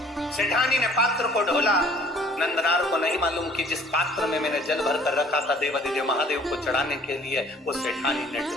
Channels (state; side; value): normal; both; correlation 0.55